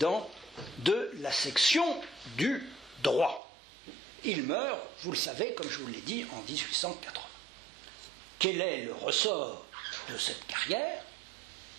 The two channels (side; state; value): left; drops out; at 3.4 s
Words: de la section du droit. Il meurt, vous le savez, comme je vous l'ai dit, en 1880. Quel est le ressort de cette carrière?